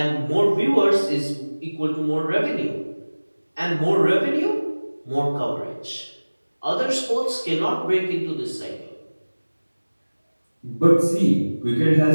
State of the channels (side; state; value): both; inverted; correlation -1.00